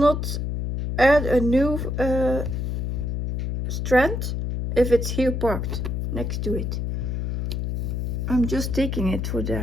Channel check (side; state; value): left; noise; hum, 2 dB below the sound